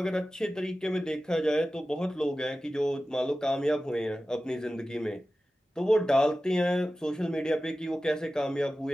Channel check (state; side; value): normal; both; correlation 0.95